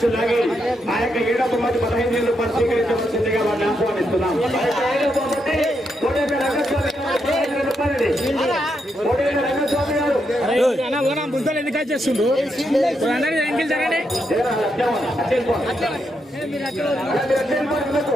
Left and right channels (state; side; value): normal; both; correlation 0.81